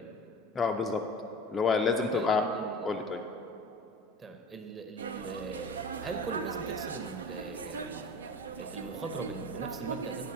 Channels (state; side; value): normal; both; correlation 0.37